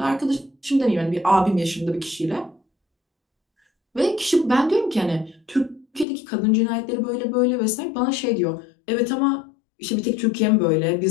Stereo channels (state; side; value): drops out; right; at 6.1 s